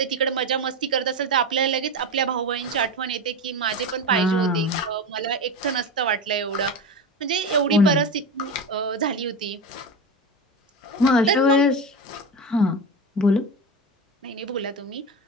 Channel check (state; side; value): normal; both; correlation 0.21